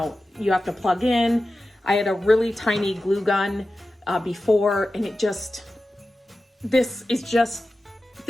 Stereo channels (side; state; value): both; normal; correlation 0.94